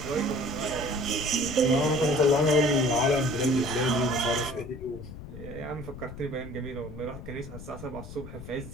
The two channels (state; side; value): noise; left; rumble, 12 dB below the sound